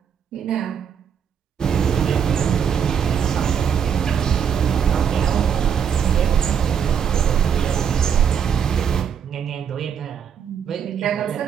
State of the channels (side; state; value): left; quieter; 7.7 dB